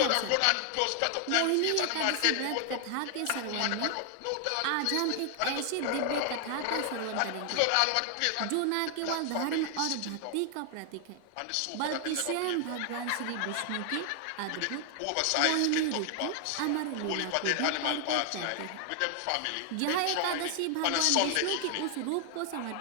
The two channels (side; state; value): both; different; correlation 0.00